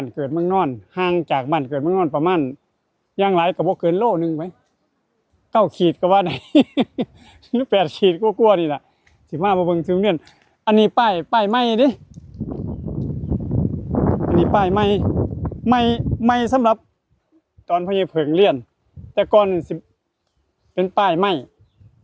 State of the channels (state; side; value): identical; both; correlation 1.00